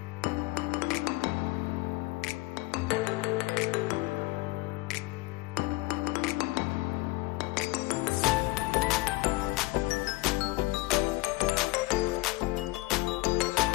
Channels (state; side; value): quieter; right; 21.3 dB